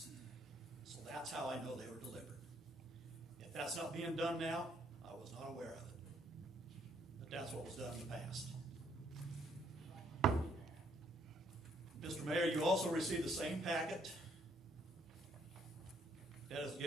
So that's how I know they were delivered. If that's not being done now, I was not aware of it. But that's what was done in the past. Mr. Mayor, you also received the same packet that is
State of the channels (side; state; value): both; normal; correlation 0.69